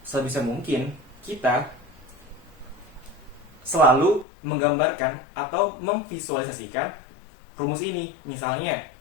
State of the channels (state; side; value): drops out; right; at 4.2 s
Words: sebisa mungkin kita selalu menggambarkan atau memvisualisasikan rumus ini. Misalnya